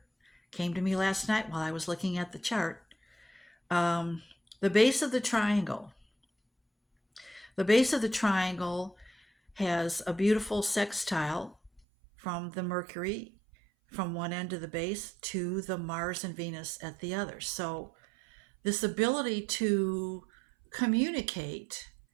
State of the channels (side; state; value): left; drops out; at 11.8 s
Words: Came to me last night while I was looking at the chart. The base of the triangle. The base of the triangle has a beautiful sextile from the Mercury from one end of the base to the Mars and Venus at the other. So this ability to communicate